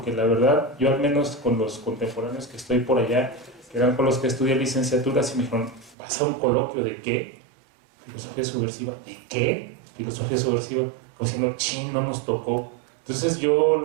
la verdad, yo al menos con los contemporáneos que estoy por allá, que eran con los que estudié licenciaturas, y me dijeron, ¿vas a un coloquio de qué? Filosofía subversiva. ¿De qué? Filosofía subversiva. Como diciendo, chin, no nos tocó. Entonces yo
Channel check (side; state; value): left; drops out; at 6.0 s